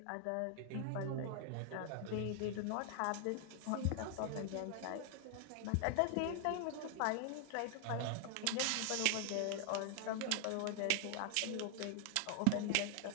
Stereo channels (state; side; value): different; both; correlation 0.00